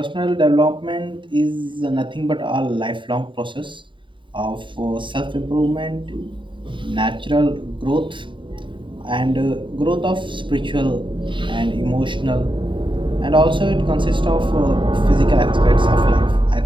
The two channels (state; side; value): late; left; 0.24 ms